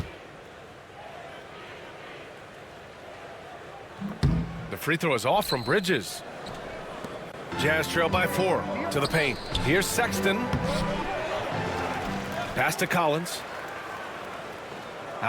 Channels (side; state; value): both; identical; correlation 1.00